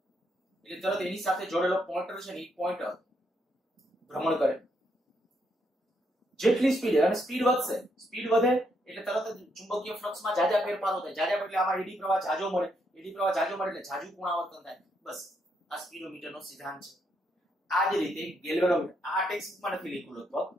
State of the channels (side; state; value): both; normal; correlation 0.76